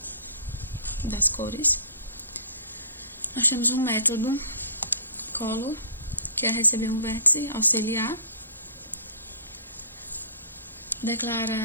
das cores. Nós temos um método color, que é receber um vértice auxiliar,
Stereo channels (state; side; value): inverted; both; correlation -0.48